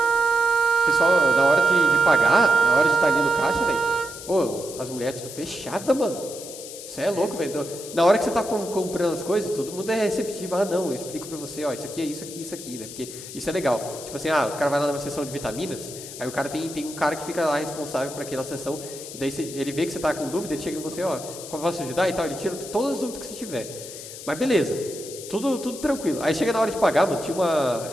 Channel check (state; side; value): noise; left; hiss, 12 dB below the sound